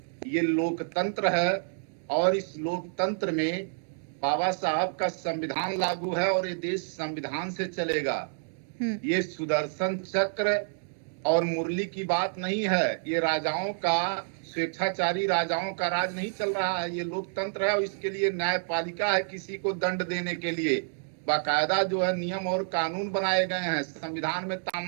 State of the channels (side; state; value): left; silent; digital silence